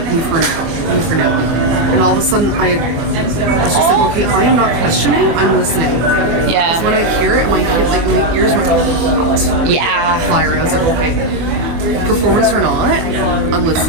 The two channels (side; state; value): left; late; 24 ms